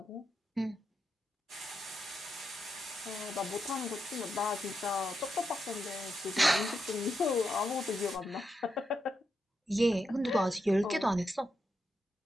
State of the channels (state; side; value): normal; both; correlation 0.84